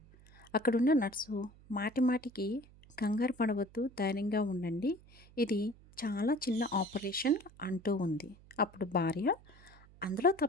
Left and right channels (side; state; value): right; noise; hum, 24 dB below the sound